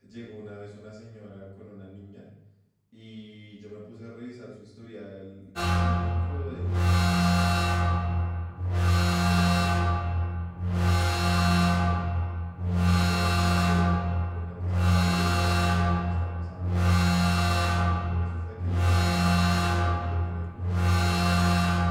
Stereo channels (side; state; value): both; identical; correlation 1.00